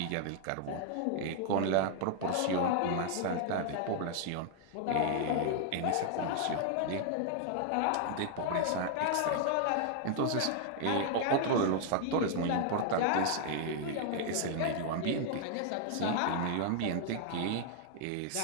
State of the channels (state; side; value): different; both; correlation 0.00